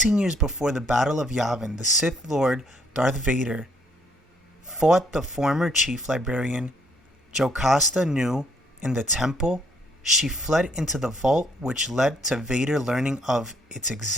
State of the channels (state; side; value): normal; both; correlation 0.67